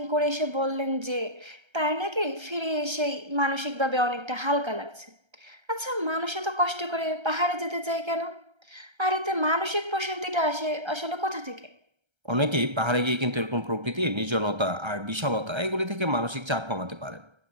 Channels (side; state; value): left; late; 1.3 ms